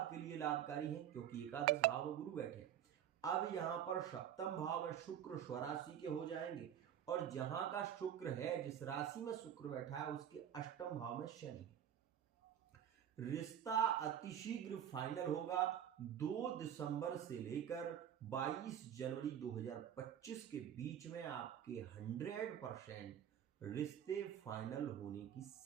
लिए लाभकारी है, क्योंकि एकादश भाव में गुरु बैठे हैं। अब यहां पर सप्तम भाव में शुक्र स्वराशि के हो जाएंगे और जहां का शुक्र है, जिस राशि में शुक्र बैठा है, उसके अष्टम भाव में शनि है। रिश्ता अतिशीघ्र फाइनल होगा। 2 दिसंबर से लेकर 22 जनवरी 2025 के बीच में आपके 100% रिश्ते फाइनल होने की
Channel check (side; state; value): left; quieter; 9.8 dB